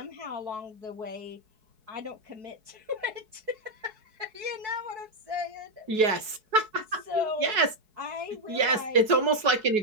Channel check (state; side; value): late; left; 4.7 ms